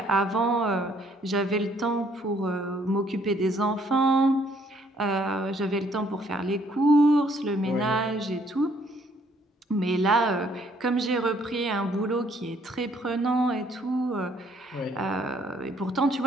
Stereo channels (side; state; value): both; normal; correlation 0.65